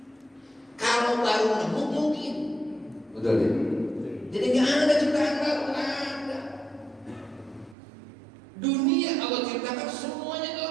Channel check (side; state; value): left; drops out; at 7.8 s